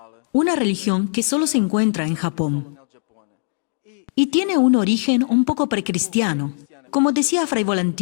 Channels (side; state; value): right; silent; digital silence